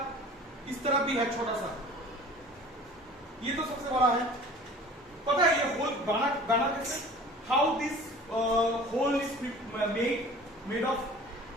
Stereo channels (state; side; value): normal; both; correlation 0.44